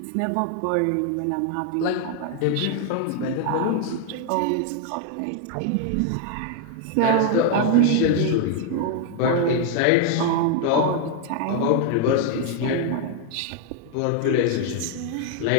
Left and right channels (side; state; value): both; different; correlation 0.00